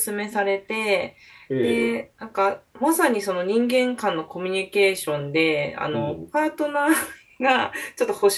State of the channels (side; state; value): both; identical; correlation 1.00